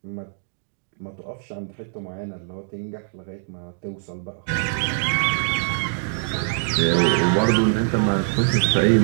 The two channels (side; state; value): left; silent; digital silence